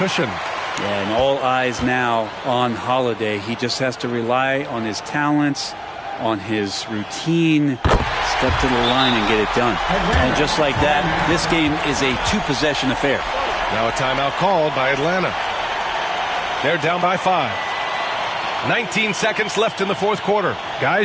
Yeah, and all eyes now on Holiday. He just has to rely on his talents, on his routine, step to the line and get it done. And just like that, this game is a 2-possession affair. Now a timeout called by Atlanta. They're down by 5. 19 seconds left in the fourth quarter.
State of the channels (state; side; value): identical; both; correlation 1.00